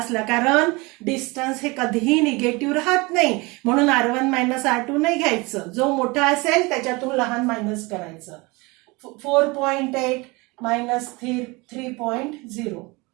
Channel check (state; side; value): quieter; left; 25.2 dB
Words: कारण डिस्टन्स हे कधीही निगेटिव्ह राहत नाही म्हणून R1 मायनस R2 नाही घ्यायचं. जो मोठा असेल त्याच्यातून लहान मायनस करायचं. 4.8 मायनस 3.0